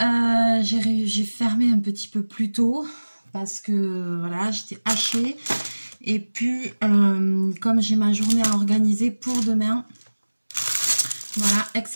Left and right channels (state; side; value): inverted; both; correlation -1.00